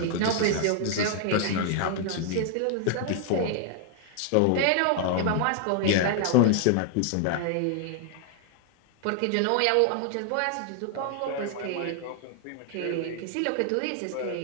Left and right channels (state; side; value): different; both; correlation 0.00